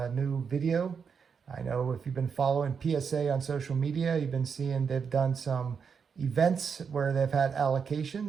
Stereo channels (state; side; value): quieter; left; 6.3 dB